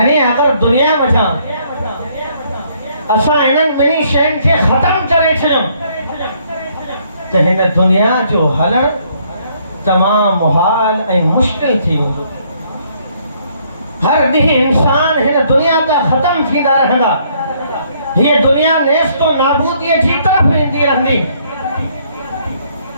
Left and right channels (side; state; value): both; inverted; correlation -0.67